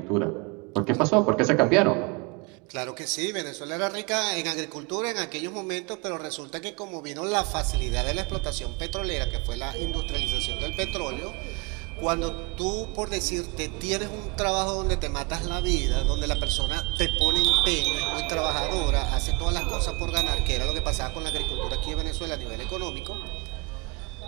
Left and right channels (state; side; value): quieter; left; 29.0 dB